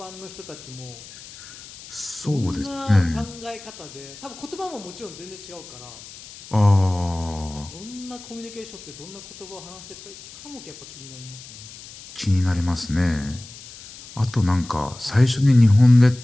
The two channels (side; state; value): left; noise; hiss, 17 dB below the sound